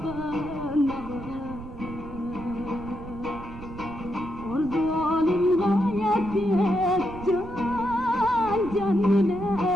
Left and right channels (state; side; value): noise; right; rumble, 13 dB below the sound